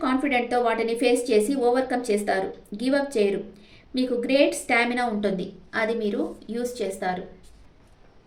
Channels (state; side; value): identical; both; correlation 1.00